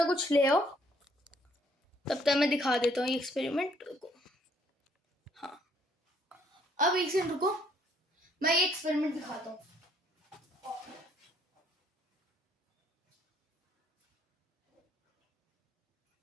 कुछ ले आओ, तब तक मैं दिखा देता हूँ ये एक्सपेरिमेंट को। हाँ अब एक सेकंड रुको, मैं ये एक्सपेरिमेंट दिखाता हूँ।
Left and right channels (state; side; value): normal; both; correlation 0.66